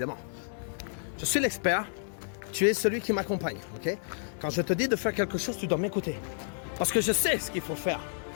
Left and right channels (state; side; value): silent; right; digital silence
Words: Je suis l'expert. Tu es celui qui m'accompagne, ok? Quand je te dis de faire quelque chose, tu dois m'écouter. Parce que je sais ce qu'il faut faire.